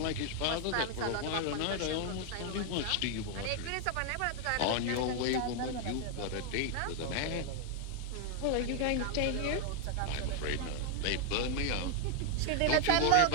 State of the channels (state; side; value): different; both; correlation 0.00